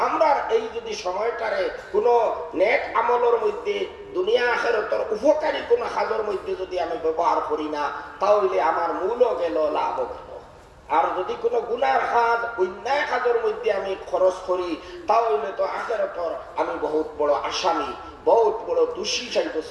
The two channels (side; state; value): both; identical; correlation 1.00